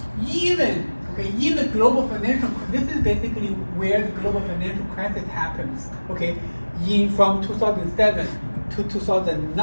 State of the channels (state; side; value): inverted; both; correlation -1.00